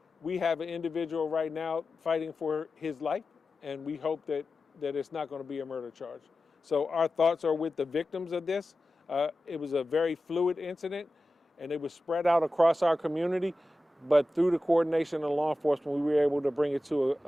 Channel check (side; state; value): both; normal; correlation 0.93